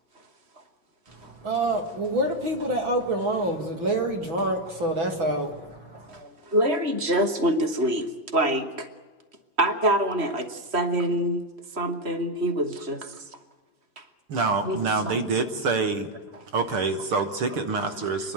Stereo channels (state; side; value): late; left; 3.1 ms